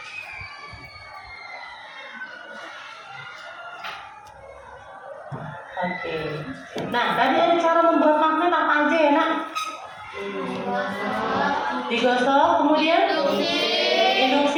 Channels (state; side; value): identical; both; correlation 1.00